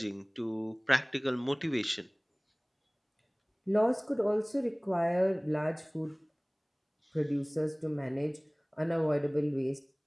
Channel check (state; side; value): identical; both; correlation 1.00